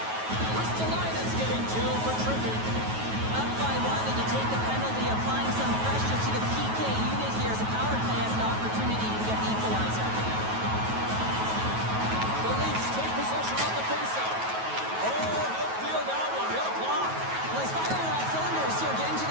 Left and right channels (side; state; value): left; late; 9.3 ms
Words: Ristolainen's getting two for tripping. Up by one, and you take the penalty, applying some pressure to the PK unit here as a power play has an opportunity to get the equalizer. The Leafs take possession on the faceoff. Oh, he'll feel that one. What a block. Well, he's firing on all cylinders here, getting to